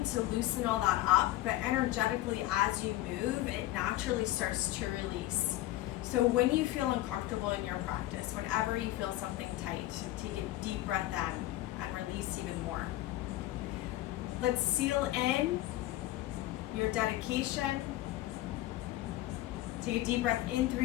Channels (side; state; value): right; quieter; 16.0 dB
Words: to loosen all that up, but energetically, as you move, it naturally starts to release. So when you feel uncomfortable in your practice, whenever you feel something tight, take a deep breath in and release even more. Let's seal in your dedication. Take a deep breath in